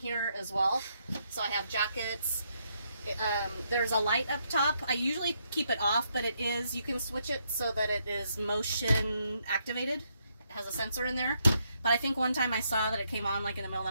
as well. So I have jackets. There's a light up top. I usually keep it off, but you can switch it so that it is motion activated. It has a sensor in there. But I think one time I saw that it came on like in the middle of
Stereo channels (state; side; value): inverted; both; correlation -0.76